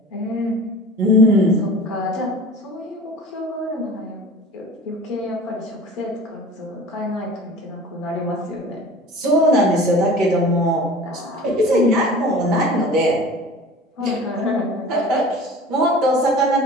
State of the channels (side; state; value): both; normal; correlation 0.41